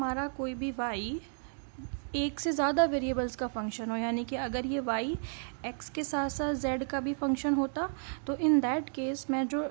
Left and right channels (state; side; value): silent; left; 56 dB below the other